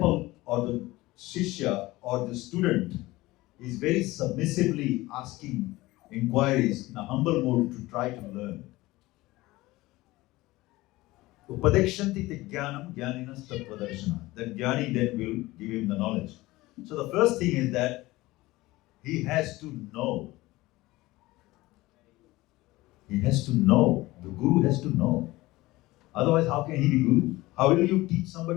or the shishya or the student is very submissively asking inquiries in a humble mode to try to learn. Upadekshanti te jnanam jnaninas tattvadarshana. That jnani then will give him the knowledge. So the first thing is that he has to know. He has to know. The guru has to know. Otherwise, how can he be guru? How will you teach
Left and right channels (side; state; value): right; quieter; 19.2 dB